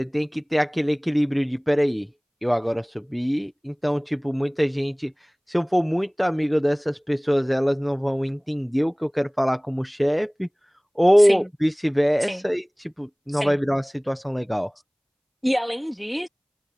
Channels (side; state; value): both; identical; correlation 1.00